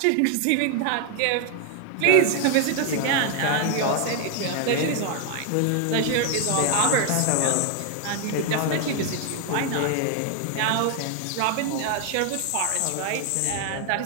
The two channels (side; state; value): both; different; correlation 0.00